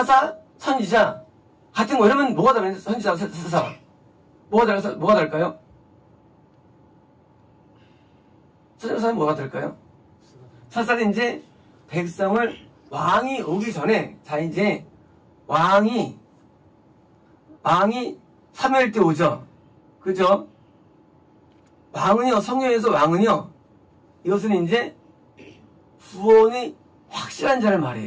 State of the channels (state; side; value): identical; both; correlation 1.00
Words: 선지자 같은 거 이러면 뭐가 다른 선지자, 사사 뭐가 다를까요? 선지자는 뭐가 다를까요? 사사는 이제 백성을 왕이 오기 전에 자 이제 왕이 사무엘 때 오죠. 그죠? 왕은요, 성경에서 왕은요, 이것은 이제 구원이 확실한 자를